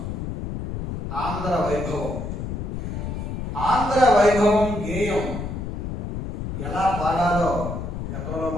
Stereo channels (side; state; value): left; noise; rumble, 5 dB below the sound